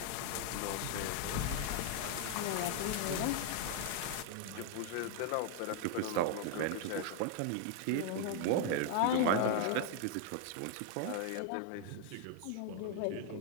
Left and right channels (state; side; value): different; both; correlation 0.00